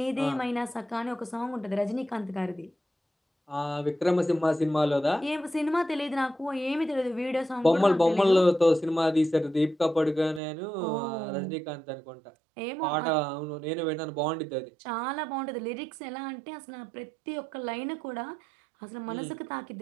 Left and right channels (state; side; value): drops out; left; at 10.4 s